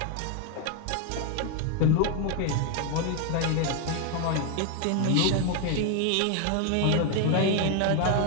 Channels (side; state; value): both; different; correlation 0.01